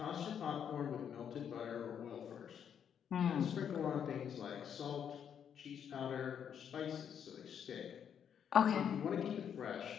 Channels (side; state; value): right; quieter; 8.3 dB